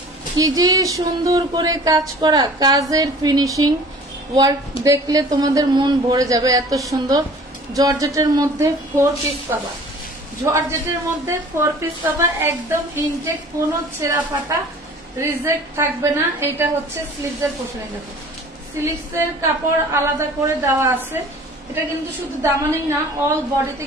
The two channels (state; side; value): normal; both; correlation 0.47